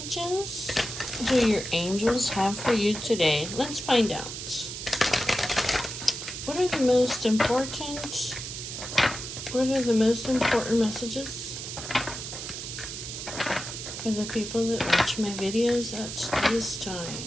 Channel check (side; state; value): right; noise; hiss, 7 dB below the sound